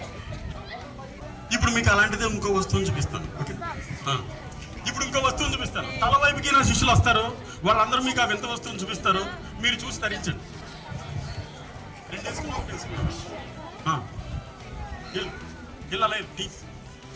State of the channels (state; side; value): identical; both; correlation 1.00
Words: ఇప్పుడు మీకు అలాంటిదే ఇంకో వస్తువుని చూపిస్తాను. ఓకే, ఇప్పుడు ఇంకో వస్తువుని చూపిస్తాను. తల వైపుకి నా శిష్యులు వస్తారు, వాళ్ళందరూ మీకు ఆ వింత వస్తువుని చూపిస్తారు. మీరు చూసి ధరించండి.